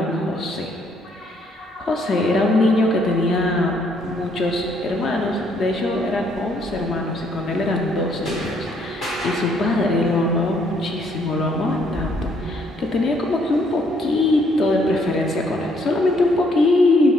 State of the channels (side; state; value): both; normal; correlation 0.68